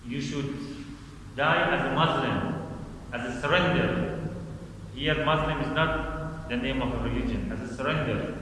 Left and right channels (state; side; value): identical; both; correlation 1.00